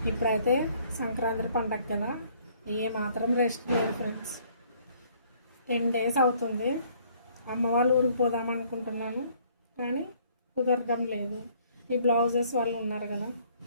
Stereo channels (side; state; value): both; inverted; correlation -0.61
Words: ఇప్పుడైతే సంక్రాంతి పండగ కదా, ఏ మాత్రం రెస్ట్ లేదు ఫ్రెండ్స్. 10 days అవుతుంది. అమ్మ వాళ్ళ ఊరికి పోదాం అనుకుంటున్నాను, కానీ కుదరడం లేదు. ఈ బ్లౌజెస్ వాళ్ళు ఉన్నారు కదా,